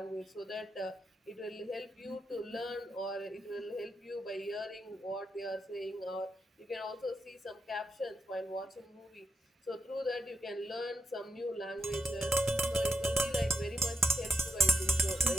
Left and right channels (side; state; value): both; normal; correlation 0.86